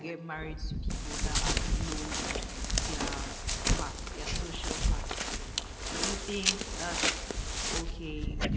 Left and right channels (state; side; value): identical; both; correlation 1.00